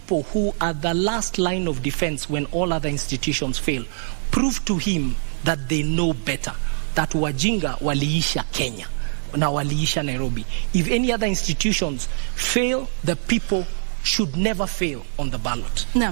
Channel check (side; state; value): left; silent; digital silence